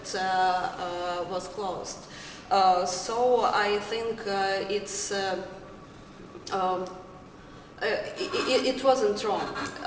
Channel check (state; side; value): identical; both; correlation 1.00